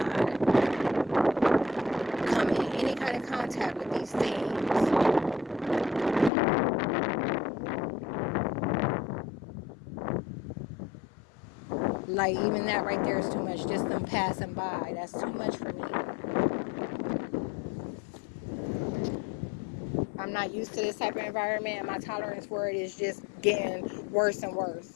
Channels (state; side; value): drops out; right; at 6.3 s